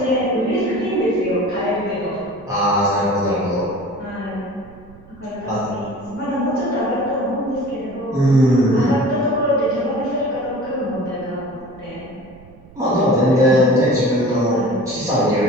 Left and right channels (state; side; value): noise; right; rumble, 22 dB below the sound